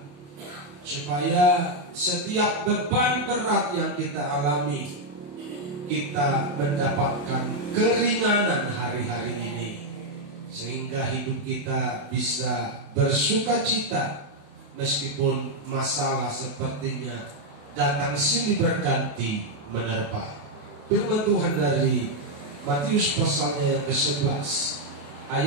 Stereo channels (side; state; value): left; late; 28 ms